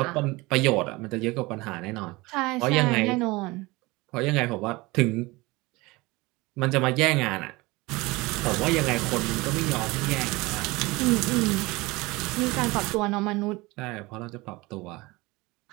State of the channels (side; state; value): left; quieter; 22.5 dB